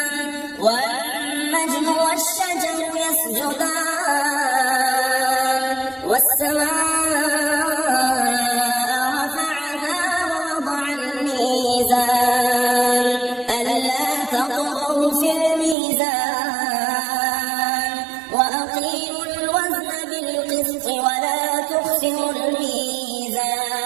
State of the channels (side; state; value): left; drops out; at 15.8 s